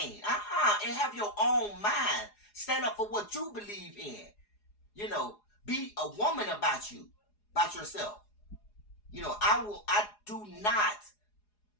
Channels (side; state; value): right; late; 4.8 ms